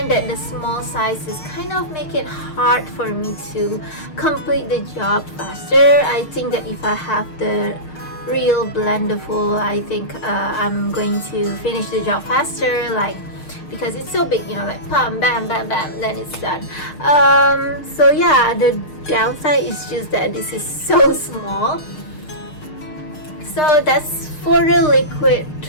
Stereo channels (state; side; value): late; right; 6.6 ms